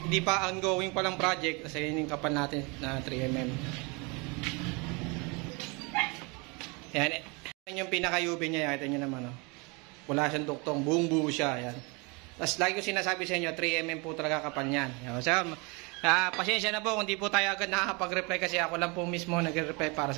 di pa ongoing palang project. Kasi yun yung kapal natin na 3mm. Yan, yan yung pinaka-UV niya, ito nyo naman, oh. Wala siyang duktong, buong buo siya, yan. Tapos lagi ko sinasabi sa inyo, 3mm po talaga kapal niyan. So, pasensya na po kung di po tayo agad nakakapag-reply kasi ako lang po mismo nag-reply para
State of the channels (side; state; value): left; quieter; 29.3 dB